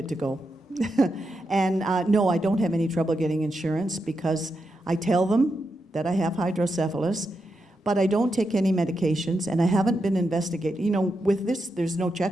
to go. And no, I don't have any trouble getting insurance because I tell them that I have hydrocephalus, but I don't take any medications, and I haven't been investigated. You know, with this, there's no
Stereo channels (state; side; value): normal; both; correlation 0.86